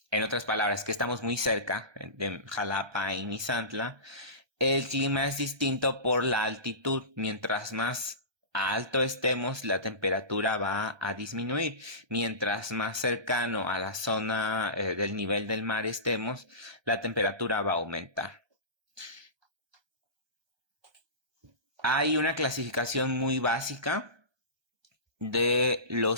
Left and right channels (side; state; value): left; late; 1.2 ms